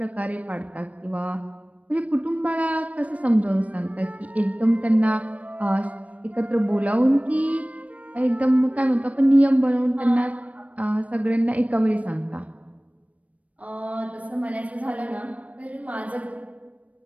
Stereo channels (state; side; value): late; left; 0.067 ms